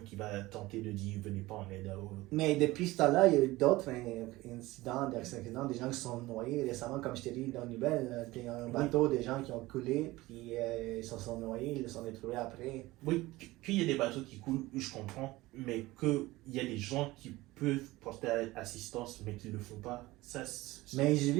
qui va tenter de dire venez pas en aide à eux. Mais depuis ce temps-là, il y a eu d'autres incidents, des accidents, des gens qui sont noyés. Récemment, comme je t'ai dit dans les nouvelles, il y a un bateau, des gens qui ont coulé, puis ils se sont noyés, ils se sont retrouvés après. Oui, qu'il y ait des bateaux qui coulent, je comprends, mais qu'il y a des gens qui peuvent porter assistance, mais qui ne le font pas, ça Mais j'ai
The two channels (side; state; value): left; quieter; 19.2 dB